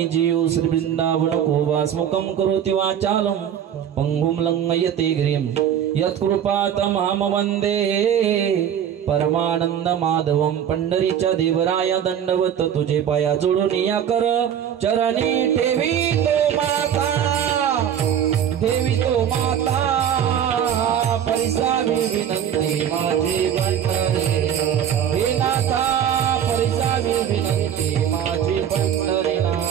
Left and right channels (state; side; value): quieter; left; 9.3 dB